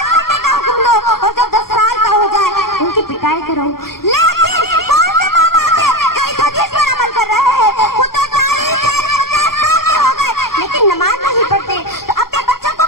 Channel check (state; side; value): late; right; 0.93 ms